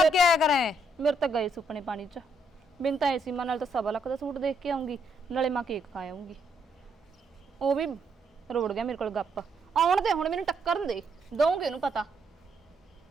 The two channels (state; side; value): normal; both; correlation 0.74